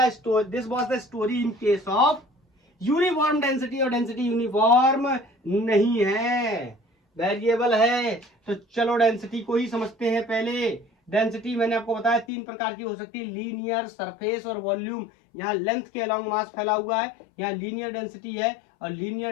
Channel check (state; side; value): drops out; right; at 12.2 s